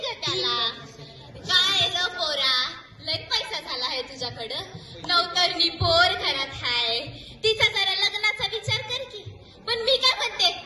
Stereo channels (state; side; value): identical; both; correlation 1.00